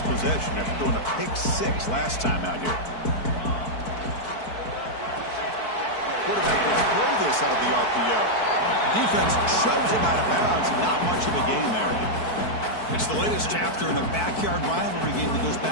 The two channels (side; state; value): right; late; 4.6 ms